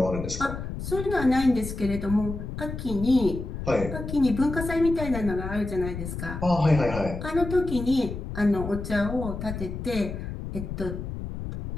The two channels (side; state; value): left; noise; rumble, 7 dB below the sound